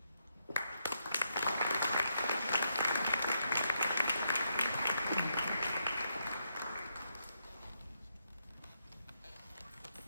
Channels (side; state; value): both; inverted; correlation -0.79